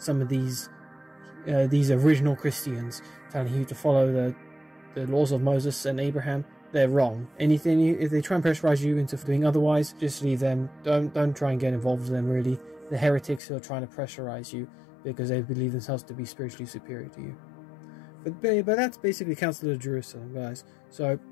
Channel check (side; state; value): right; drops out; at 13.4 s